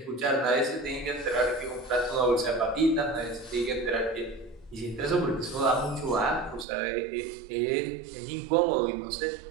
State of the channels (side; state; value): left; drops out; at 6.7 s